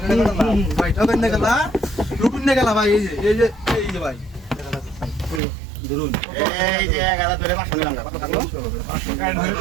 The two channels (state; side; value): drops out; left; at 5.4 s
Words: ভাই ঠকান না খেলা রুকুন না খেলা ভাই এই যে ভাই ধরুন এই যে 11 ধরে 500 নিলাম না কত থাকলো